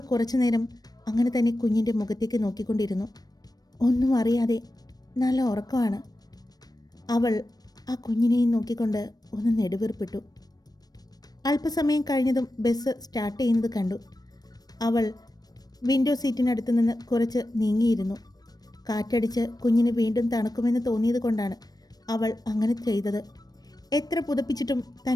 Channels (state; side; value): late; right; 0.19 ms